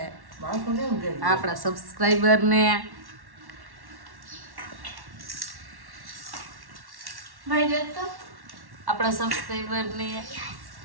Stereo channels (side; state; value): left; late; 1.1 ms